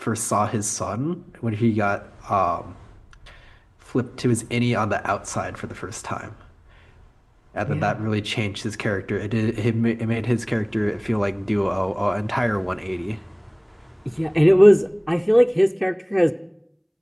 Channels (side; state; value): both; identical; correlation 1.00